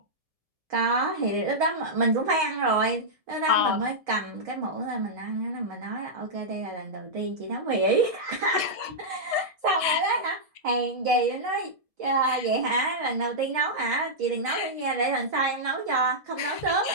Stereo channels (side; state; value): left; late; 1.7 ms